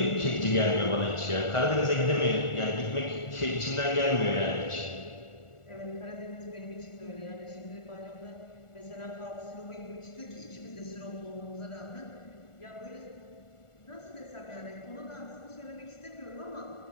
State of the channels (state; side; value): late; right; 1.4 ms